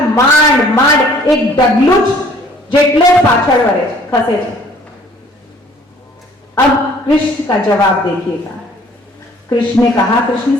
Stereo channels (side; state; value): both; normal; correlation 0.56